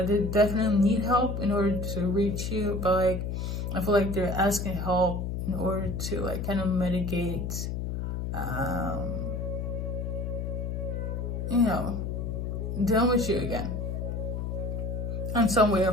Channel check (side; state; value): left; noise; hum, 3 dB below the sound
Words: definitely need help in order to reach you, but like I feel like they're asking help in order to like kind of mitigate, you know, dealing with you again in some way or